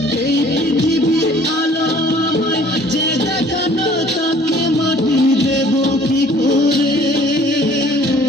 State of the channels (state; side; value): normal; both; correlation 0.54